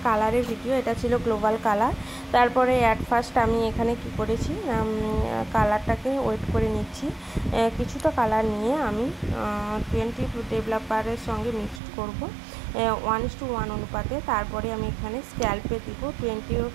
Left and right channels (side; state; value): left; drops out; at 11.8 s